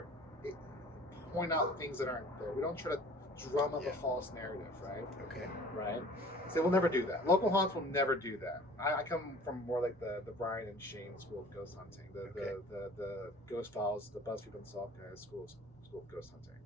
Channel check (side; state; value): both; normal; correlation 0.47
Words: point out things that aren't there. We don't try to drum up a false narrative, right? Okay. Right. So we'll never do that. Local haunts will never do that. I come from more like the Brian and Shane school of ghost hunting, the Ghost Files, the BuzzFeed Unsolved guys school of ghost hunting.